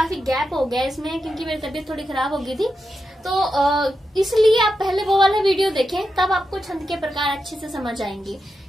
गैप हो गया इसमें, क्योंकि मेरी तबीयत थोड़ी खराब हो गई थी, तो इसलिए आप पहले वो वाला वीडियो देखें, तब आपको छंद के प्रकार अच्छे से समझ आएंगे।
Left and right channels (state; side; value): normal; both; correlation 0.88